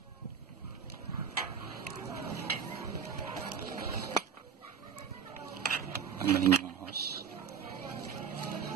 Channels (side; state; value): left; quieter; 7.1 dB